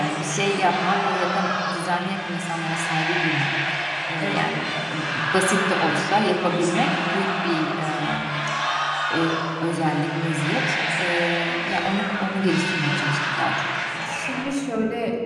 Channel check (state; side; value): identical; both; correlation 1.00